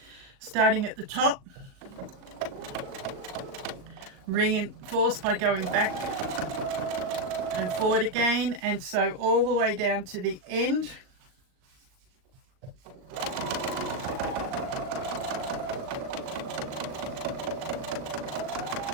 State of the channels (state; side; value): late; left; 38 ms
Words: Starting at the top, reinforce by going back and forward again, and sew all the way down to the end.